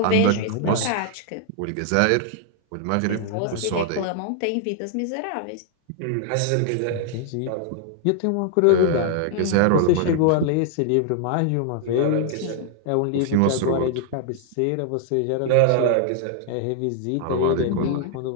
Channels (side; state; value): both; different; correlation 0.00